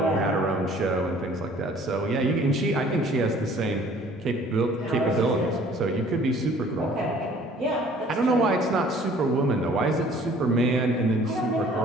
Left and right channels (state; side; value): normal; both; correlation 0.53